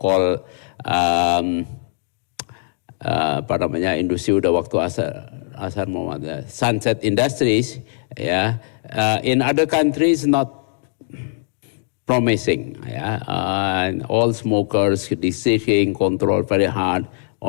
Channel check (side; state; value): right; silent; digital silence